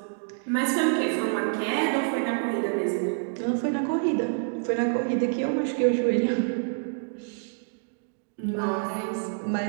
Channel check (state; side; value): silent; left; 60 dB below the other